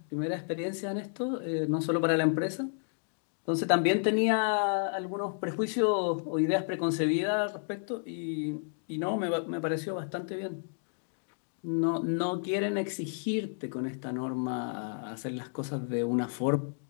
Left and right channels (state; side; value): silent; right; digital silence